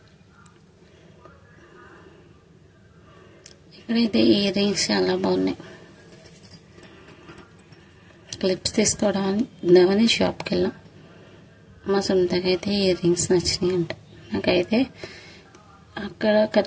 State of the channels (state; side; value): identical; both; correlation 1.00